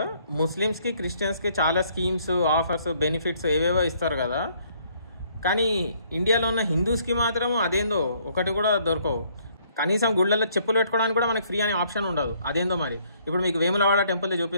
ముస్లిమ్స్ కి క్రిస్టియన్స్ కి చాలా స్కీమ్స్ ఆఫర్స్ బెనిఫిట్స్ ఏవేవో ఇస్తారు కదా. కానీ ఇండియాలో ఉన్న హిందూస్ కి మాత్రం అదేందో ఒకటి కూడా దొరకవు. కనీసం గుళ్ళల్లో చెప్పులు పెట్టుకోవడానికి కూడా మనకి ఫ్రీ అనే ఆప్షన్ ఉండదు. అదేందో మరి. ఇప్పుడు మీకు వేములవాడ టెంపుల్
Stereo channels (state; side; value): inverted; both; correlation -0.65